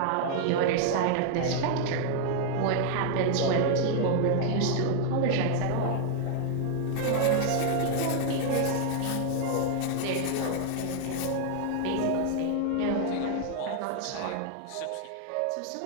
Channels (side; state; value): both; different; correlation 0.00